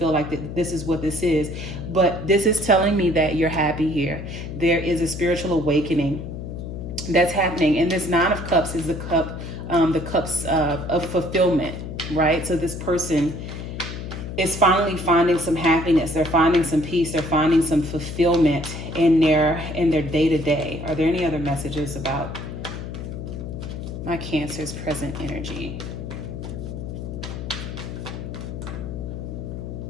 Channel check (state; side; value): noise; left; hum, 7 dB below the sound